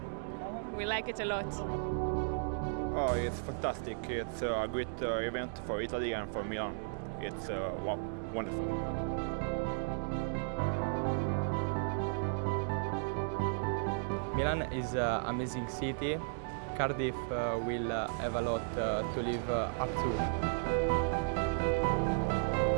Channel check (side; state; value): left; silent; digital silence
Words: We like it a lot. Oh, it's fantastic. It's a great event for Italy and for Milan. It's wonderful. Milan is an amazing city. Cardiff will have a lot to live up to.